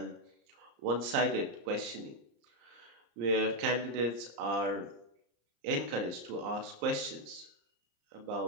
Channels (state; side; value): late; left; 34 ms